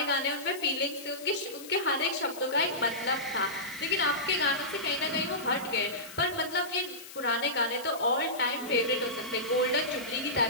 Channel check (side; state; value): left; noise; hiss, 15 dB below the sound